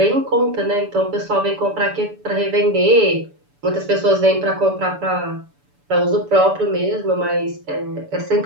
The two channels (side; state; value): left; late; 6.9 ms